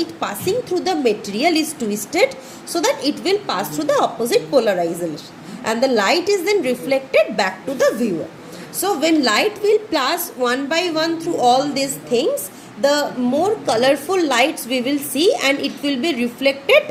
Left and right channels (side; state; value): both; identical; correlation 1.00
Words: passing through the material is twisted so that it will pass through the opposite polarization, and the light is then reflected back to the viewer. So when light will pass one by one through all these things, the more colorful lights we will see, and it will be